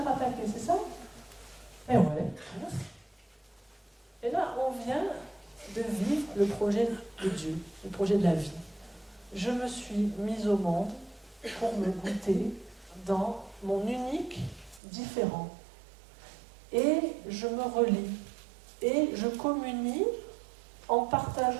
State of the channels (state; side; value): drops out; left; at 14.8 s